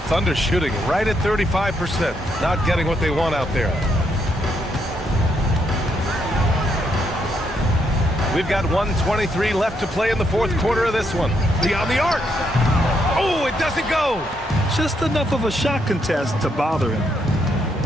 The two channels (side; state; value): both; normal; correlation 0.77